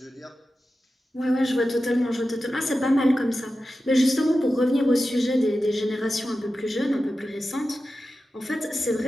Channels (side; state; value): both; normal; correlation 0.93